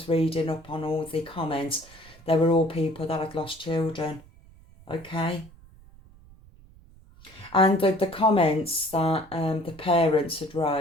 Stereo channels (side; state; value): right; noise; rumble, 24 dB below the sound